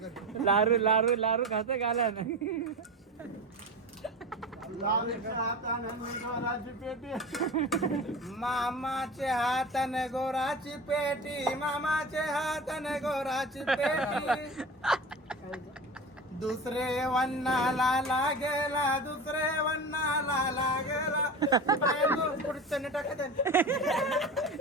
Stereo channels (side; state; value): both; normal; correlation 0.30